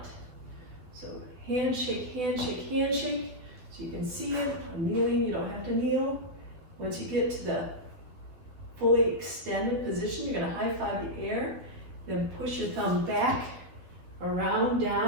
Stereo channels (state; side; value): late; left; 12 ms